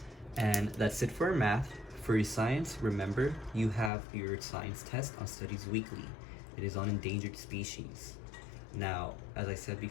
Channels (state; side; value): drops out; right; at 3.9 s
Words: And that's it for our math. For your science, remember, you have your science test on Studies Weekly. It is on endangered species. Now, as I said